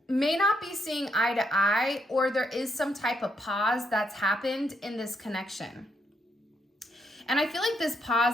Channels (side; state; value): both; normal; correlation 0.76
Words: may not be seeing eye to eye, or there is some type of pause that's happened in this connection. And I feel like this